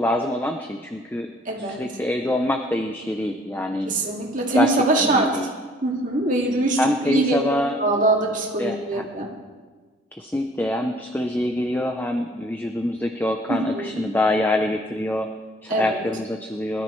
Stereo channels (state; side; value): normal; both; correlation 0.56